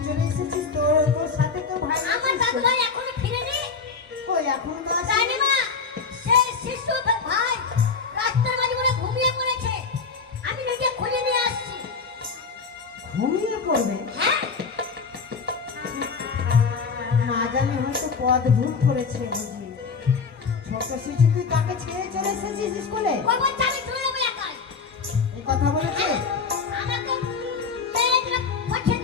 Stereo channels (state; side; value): quieter; right; 5.1 dB